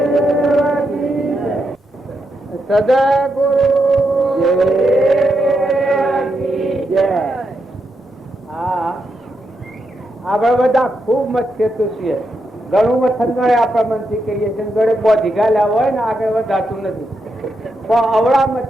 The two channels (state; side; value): normal; both; correlation 0.83